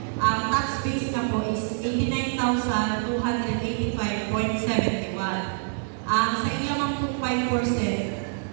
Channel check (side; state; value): left; silent; digital silence